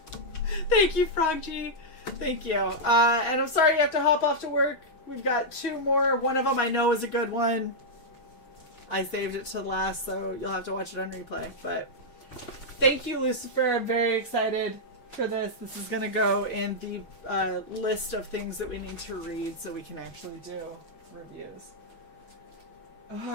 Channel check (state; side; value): late; right; 6.3 ms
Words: Thank you, Frog G. Thank you. And I'm sorry you have to hop off to work. We've got 2 more. One of them I know is a good one. I saved it to the last, so you'll have to watch it on replay. But thank you, Lucifer. I'm very excited for this. This is going to go in the list of things that we need to read so we can actually do reviews. Oh,